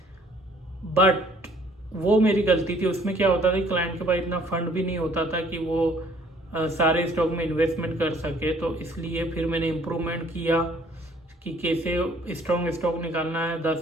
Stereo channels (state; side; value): normal; both; correlation 0.59